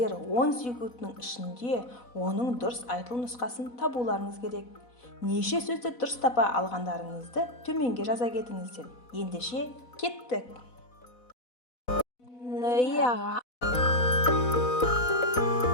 10 секундтың ішінде оның дұрыс айтылу нұсқасын табуларыңыз керек. Неше сөзді дұрыс тапа алғандарыңызды төменге жаза кетіңіздер. Ендеше кеттік.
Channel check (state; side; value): late; right; 4.1 ms